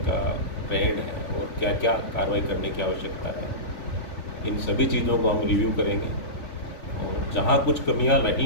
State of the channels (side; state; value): right; late; 3.5 ms